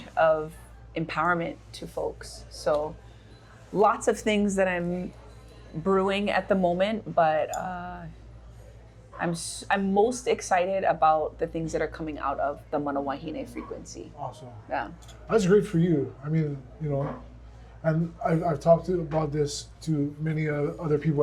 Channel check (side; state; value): both; identical; correlation 1.00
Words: of empowerment to folks. So lots of things that I'm brewing at the moment, but I'm most excited about the things that are coming out of the mana wahine frequency. Awesome. Yeah. That's great for you. I mean, you know, and I've talked about this to many other people